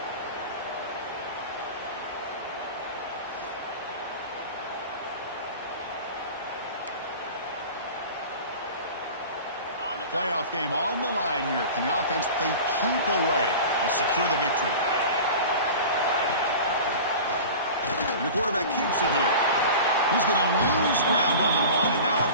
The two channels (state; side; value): inverted; both; correlation -0.35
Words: Playoff game on the line here. Can the offense play keep away and secure the victory? And the quarterback keeps it here. He's going to lose ground on the run, and now